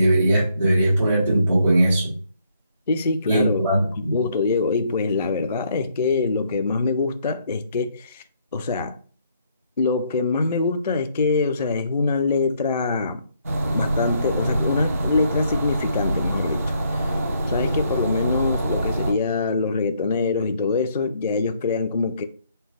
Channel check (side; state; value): both; inverted; correlation -0.70